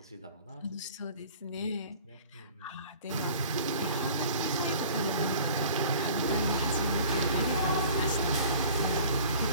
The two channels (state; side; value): inverted; both; correlation -0.47